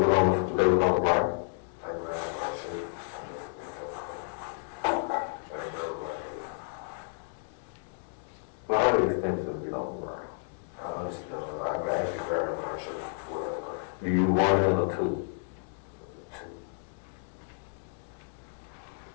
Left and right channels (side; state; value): right; silent; digital silence